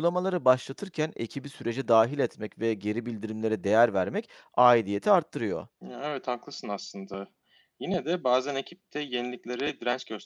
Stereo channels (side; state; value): both; identical; correlation 1.00